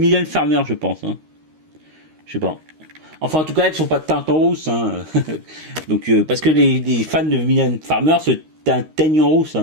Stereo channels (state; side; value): late; left; 13 ms